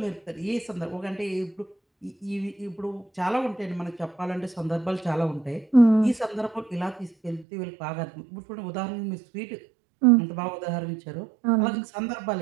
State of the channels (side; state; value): left; drops out; at 7.5 s